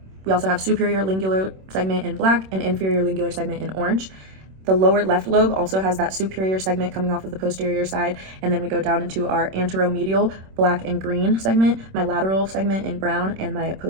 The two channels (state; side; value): late; left; 26 ms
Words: we also have superior lingular segment in black and inferior lingular segment in orange. The lower left lobe also has that superior segment coming off of the posterior side, and then we go down into our anteromedial black and green segment, my lateral segment in brown, and my